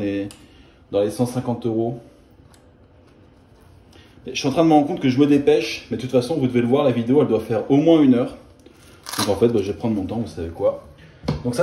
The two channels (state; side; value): identical; both; correlation 1.00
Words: 150 €. Je suis en train de me rendre compte que je me dépêche, mais de toute façon, vous devez le voir, la vidéo, elle doit faire au moins 1 heure. Donc en fait, bah, je vais prendre mon temps, vous savez quoi. Donc